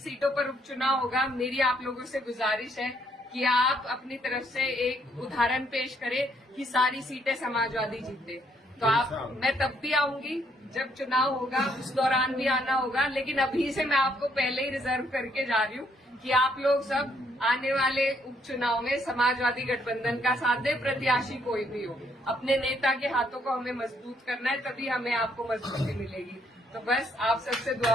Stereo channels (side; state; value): both; normal; correlation 0.70